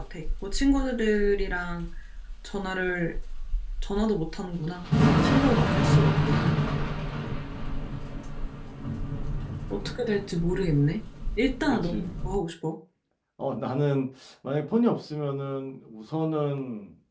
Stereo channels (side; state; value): both; identical; correlation 1.00